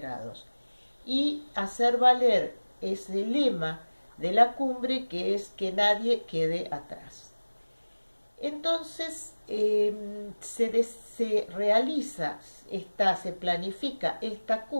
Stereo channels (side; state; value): both; inverted; correlation -1.00